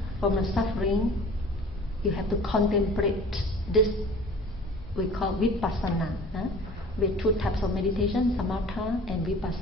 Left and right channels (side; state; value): both; normal; correlation 0.44